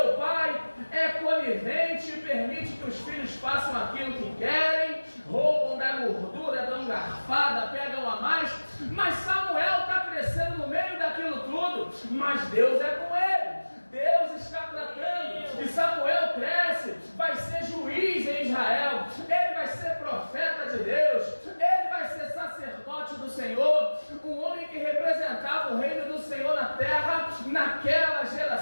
pai é conivente e permite que os filhos façam aquilo que querem, roubam da gordura, dão garfada, pegam a mais, mas Samuel está crescendo no meio daquilo tudo, mas Deus é com ele. Deus está tratando, e Samuel cresce, vai ser juiz em Israel, ele vai ser profeta de Deus, ele vai ser sacerdote do Senhor, um homem que representava o reino do Senhor na terra, naquela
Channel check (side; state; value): both; inverted; correlation -1.00